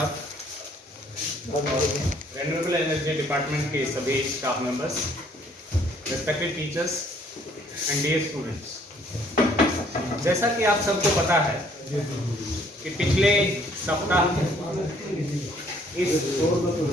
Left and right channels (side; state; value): both; normal; correlation 0.62